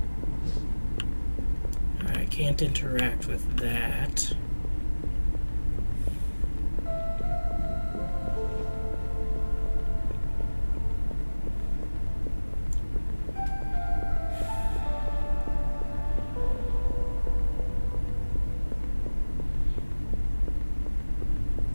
I can't interact with that.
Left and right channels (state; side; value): inverted; both; correlation -1.00